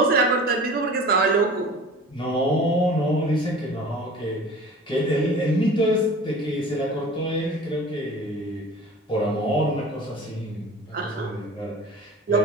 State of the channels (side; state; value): both; normal; correlation 0.40